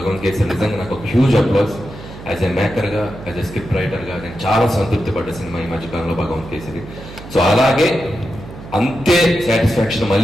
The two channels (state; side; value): noise; right; hum, 15 dB below the sound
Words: కేసరి నిజంగా నాకు ఒక హ్యూజ్ అప్లాస్. యాజ్ ఎ మేకర్గా, యాజ్ ఎ స్క్రిప్ట్ రైటర్గా నేను చాలా సంతృప్తి పడ్డ సినిమా ఈ మధ్యకాలంలో భగవాన్ కేసరి. సో అలాగే అంతే సాటిస్ఫాక్షన్